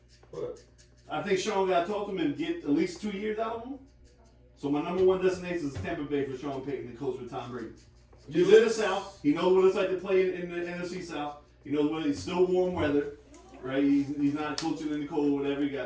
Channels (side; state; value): both; identical; correlation 1.00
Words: What? I think Sean got to talk to him and get at least 2 years out of him. So my number 1 destination is Tampa Bay for Sean Payton, the coach with Tom Brady. He's in the South. He knows what it's like to play in the NFC South. He knows what it's still warm weather. right? He's not coaching in the cold, whatever. He